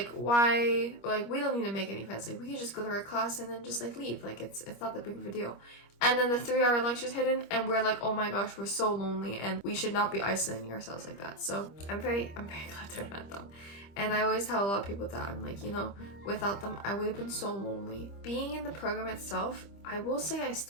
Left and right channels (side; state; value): right; late; 25 ms